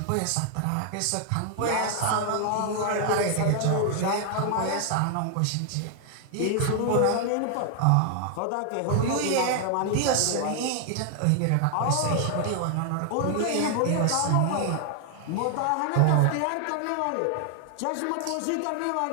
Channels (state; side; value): different; both; correlation 0.00